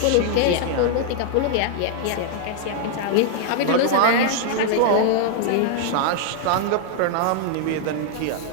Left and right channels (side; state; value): both; different; correlation 0.00